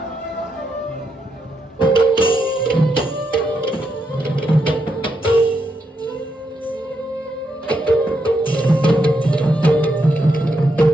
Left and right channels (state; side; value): normal; both; correlation 0.81